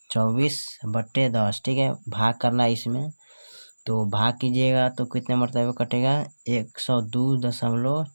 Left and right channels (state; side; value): inverted; both; correlation -1.00